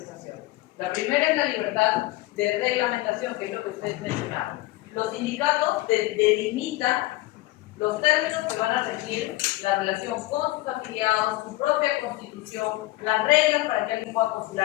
La primera es la libertad de reglamentación, que es lo que ustedes mencionaron. Los sindicatos delimitan los términos que van a regir la relación con sus afiliados, su propia constitución, las reglas para que alguien pueda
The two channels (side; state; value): right; quieter; 18.5 dB